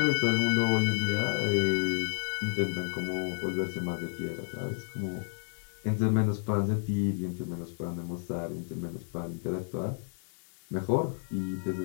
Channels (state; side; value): silent; right; 56 dB below the other